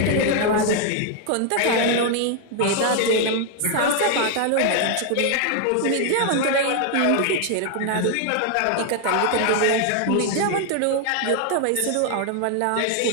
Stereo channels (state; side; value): different; both; correlation 0.00